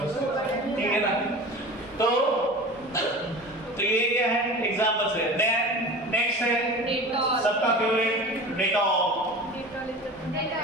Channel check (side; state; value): both; normal; correlation 0.35